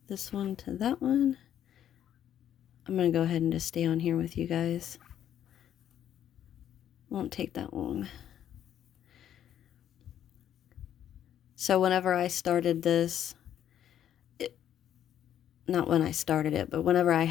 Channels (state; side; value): quieter; right; 10.4 dB